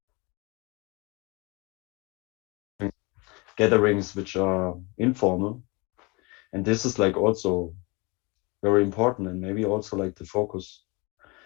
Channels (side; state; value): right; quieter; 27.3 dB